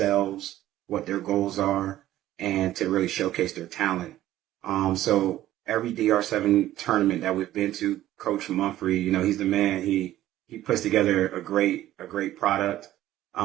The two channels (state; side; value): quieter; left; 13.9 dB